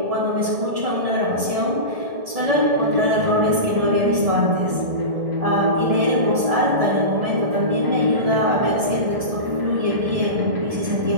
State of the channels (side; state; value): left; late; 1.6 ms